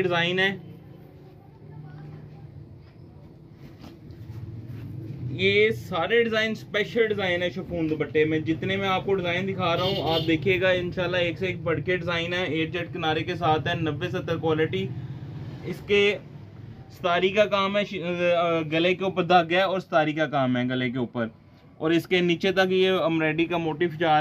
डिजाइन है। ये सारे डिजाइन स्पेशल डिजाइन है शिफॉन दुपट्टे में। जितने मैं आपको डिजाइन दिखा रहा हूँ आप देखिएगा, इंशाल्लाह एक से एक बढ़ के डिजाइन है। 8 जेट किनारे के साथ है, 90-70 क्वालिटी। इसके स्तारी का काम है, गले के ऊपर धागा है और स्तारी का काम है गले के ऊपर, और इसके नीचे तक ये एम्ब्रॉयडरी का मोटिफ जा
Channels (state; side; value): identical; both; correlation 1.00